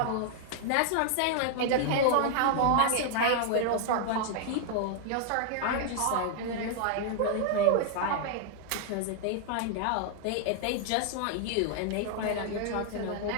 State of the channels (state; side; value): different; both; correlation 0.00